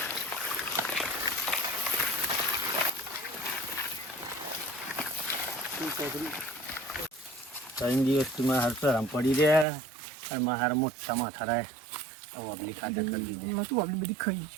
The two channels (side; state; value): left; drops out; at 9.7 s